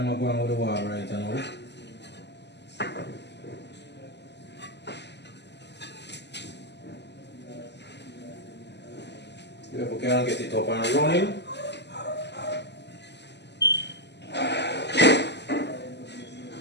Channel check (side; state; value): right; late; 0.50 ms